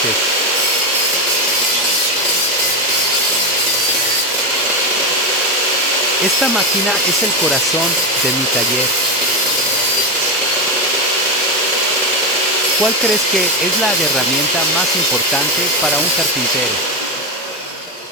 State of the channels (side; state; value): both; normal; correlation 0.12